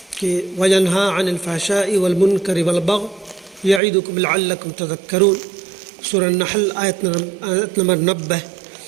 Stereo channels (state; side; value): drops out; left; at 3.8 s